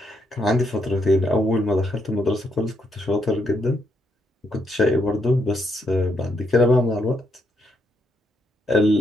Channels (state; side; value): normal; both; correlation 0.77